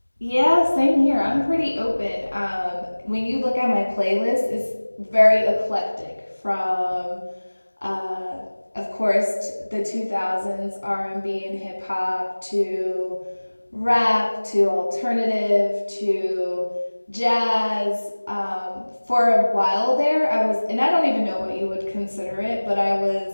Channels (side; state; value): both; inverted; correlation -1.00